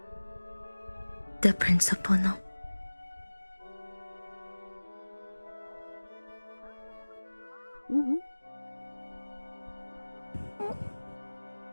the principal know.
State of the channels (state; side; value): inverted; both; correlation -1.00